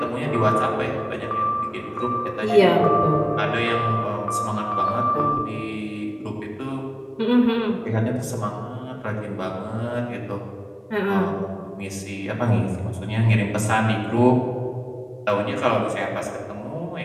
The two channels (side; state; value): both; identical; correlation 1.00